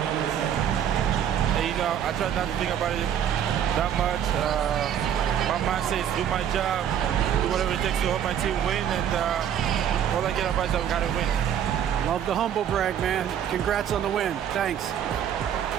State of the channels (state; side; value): quieter; left; 9.4 dB